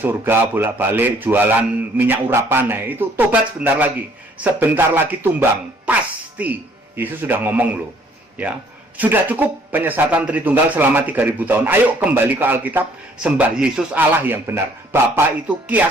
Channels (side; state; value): both; normal; correlation 0.60